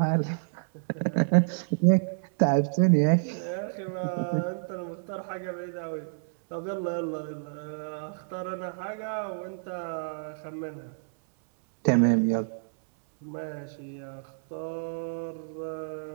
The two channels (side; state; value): left; silent; 59 dB below the other